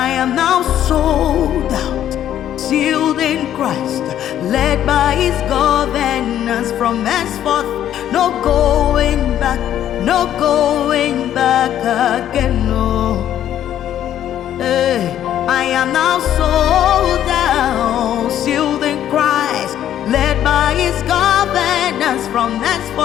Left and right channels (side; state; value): right; quieter; 11.1 dB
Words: am now sold out, sealed in Christ, led by His governance from henceforth. No going back, no going back again. No, hey, I am now sold out, sealed in Christ, led by His governance from